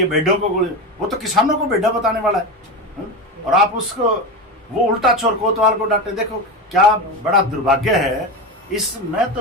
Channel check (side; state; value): both; normal; correlation 0.20